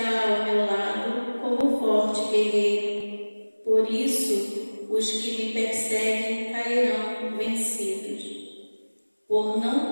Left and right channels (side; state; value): both; inverted; correlation -1.00